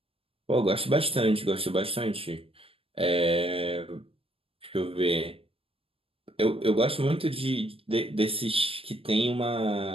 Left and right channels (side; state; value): left; late; 0.27 ms